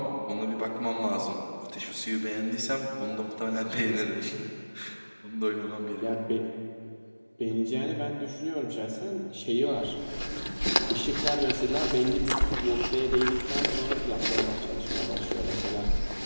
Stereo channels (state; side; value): inverted; both; correlation -1.00